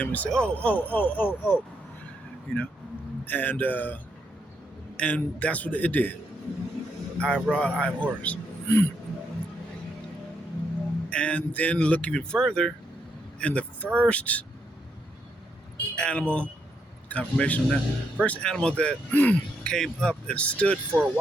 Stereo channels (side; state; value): both; normal; correlation 0.78